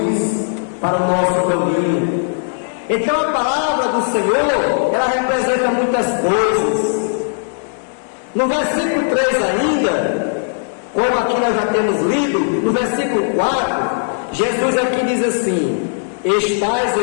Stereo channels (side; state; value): right; silent; digital silence